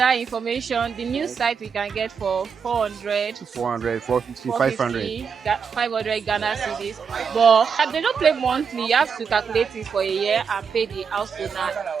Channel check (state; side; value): quieter; left; 6.3 dB